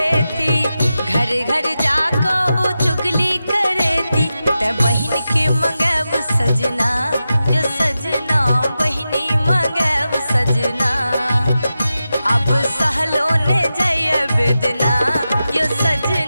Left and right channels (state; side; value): inverted; both; correlation -0.92